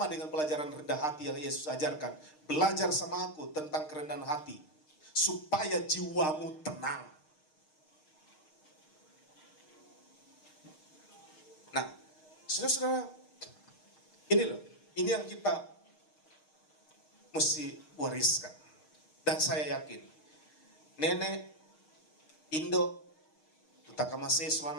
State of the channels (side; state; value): right; late; 6.5 ms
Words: dengan pelajaran rendah hati yang Yesus ajarkan. Belajar sama aku tentang kerendahan hati, supaya jiwamu tenang. Nah, saudara-saudara, ini loh, ini yang kita mesti wariskan. Dan saya yakin, nenek Indo, Tutakama